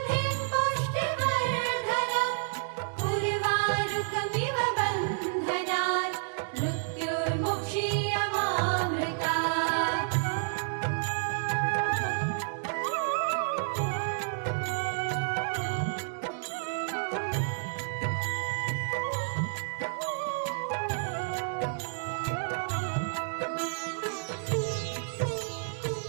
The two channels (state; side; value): silent; left; digital silence